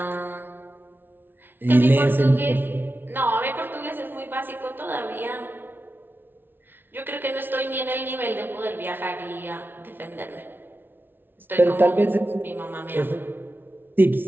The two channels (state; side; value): late; left; 0.10 ms